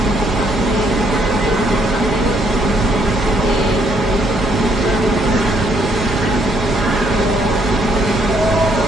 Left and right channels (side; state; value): left; noise; rumble, 15 dB below the sound